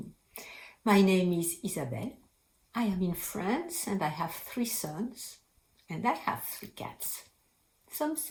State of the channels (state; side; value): identical; both; correlation 1.00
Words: My name is Isabelle. I am in France and I have 3 sons and I have 3 cats. Some